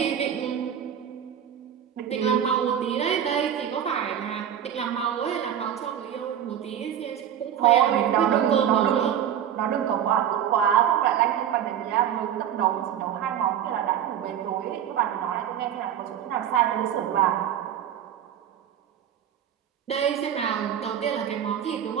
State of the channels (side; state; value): left; quieter; 9.7 dB